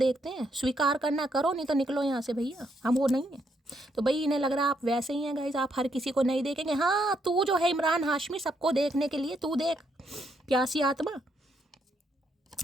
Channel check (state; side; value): normal; both; correlation 0.76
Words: हैं। स्वीकार करना करो, नहीं तो निकलो यहाँ से भैया, हम वो नहीं है। तो भाई इन्हें लग रहा है आप वैसे ही हैं गाइस, आप हर किसी को नहीं देखेंगे। हाँ तू जो है इमरान हाशमी, सबको देखने के लिए तू देख, प्यासी आत्मा।